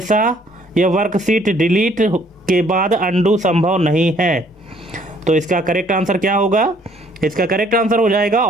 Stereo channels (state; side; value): normal; both; correlation 0.62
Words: या वर्कशीट डिलीट के बाद अनडू संभव नहीं है? तो इसका करेक्ट आंसर क्या होगा? इसका करेक्ट आंसर हो जाएगा